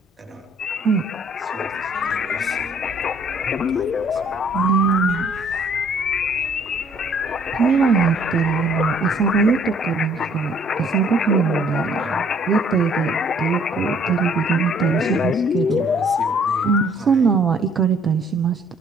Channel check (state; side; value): normal; both; correlation 0.60